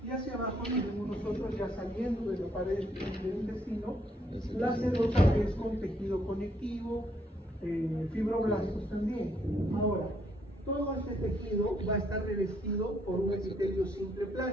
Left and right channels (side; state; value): both; normal; correlation 0.71